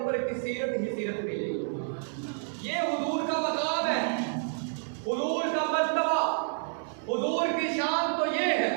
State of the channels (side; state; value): left; silent; 58 dB below the other